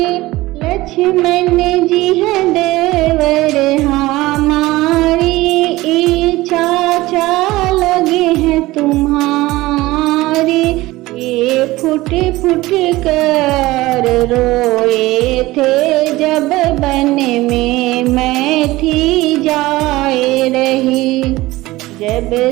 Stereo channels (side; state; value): left; quieter; 18.8 dB